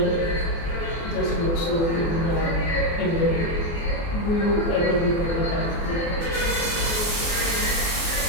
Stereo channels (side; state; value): right; late; 24 ms